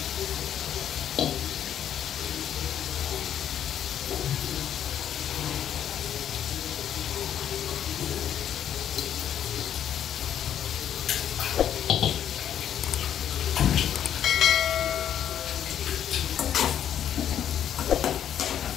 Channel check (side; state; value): right; quieter; 9.8 dB